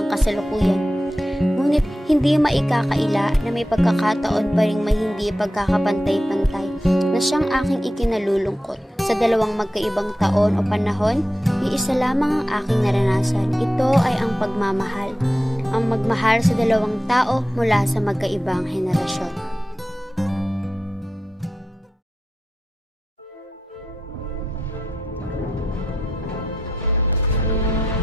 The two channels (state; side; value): normal; both; correlation 0.89